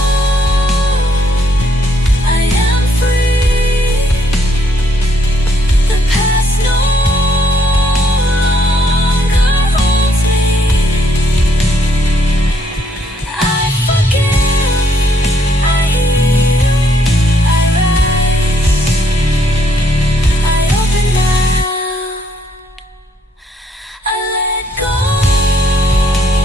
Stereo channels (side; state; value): both; normal; correlation 0.70